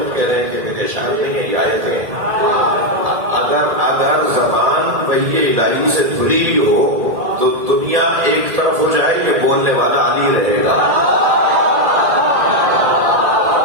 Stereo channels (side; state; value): left; late; 1.8 ms